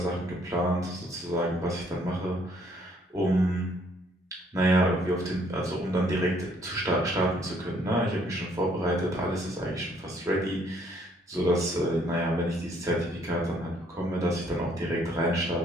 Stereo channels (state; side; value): normal; both; correlation 0.65